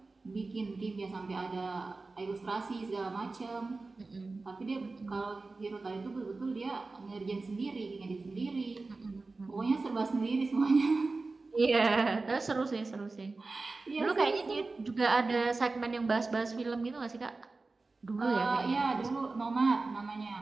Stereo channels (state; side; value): quieter; left; 3.6 dB